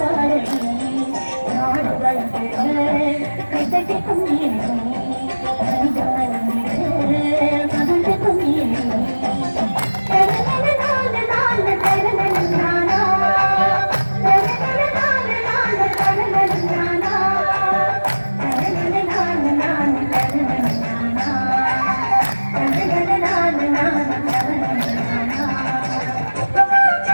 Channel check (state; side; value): inverted; both; correlation -1.00